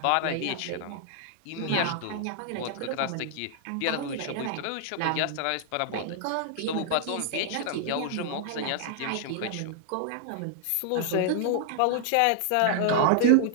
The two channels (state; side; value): different; both; correlation -0.01